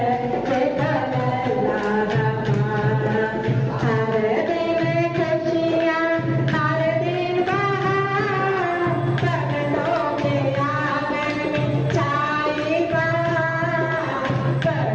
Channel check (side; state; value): both; identical; correlation 1.00